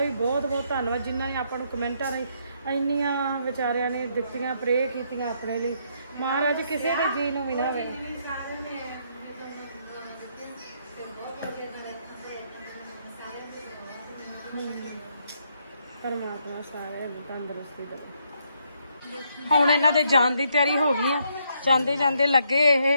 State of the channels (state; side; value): inverted; both; correlation -0.74